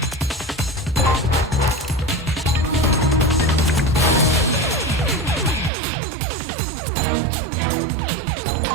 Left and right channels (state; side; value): drops out; left; at 5.7 s